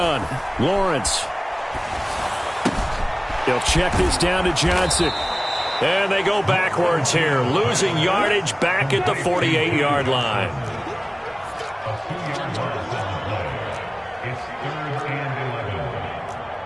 Lawrence. They'll check this down to Johnson. And they go backwards here, losing yardage back at the 48-yard line.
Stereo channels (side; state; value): both; identical; correlation 1.00